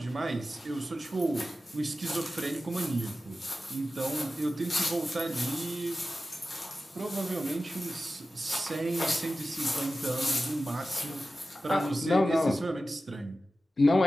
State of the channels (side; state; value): both; normal; correlation 0.94